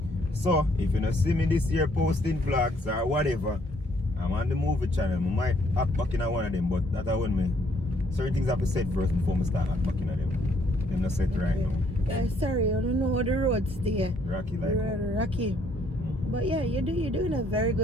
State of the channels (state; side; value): normal; both; correlation 0.67